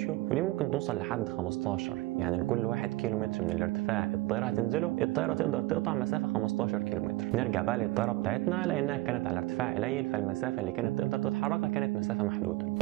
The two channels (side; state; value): left; quieter; 19.2 dB